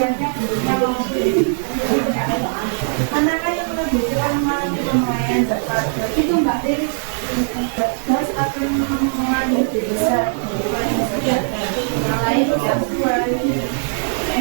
bentuknya maupun manakah yang menunjukkan mengalami pemuaian itu Mbak Dewi gas akan mengalami lebih besar yang lain yang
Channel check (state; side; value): silent; left; 66 dB below the other